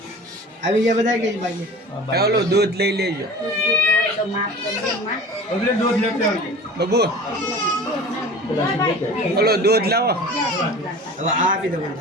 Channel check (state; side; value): normal; both; correlation 0.40